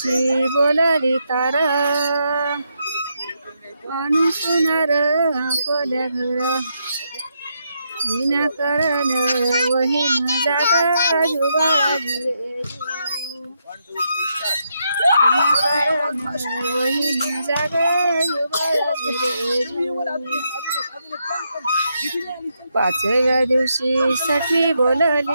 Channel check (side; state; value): both; inverted; correlation -0.80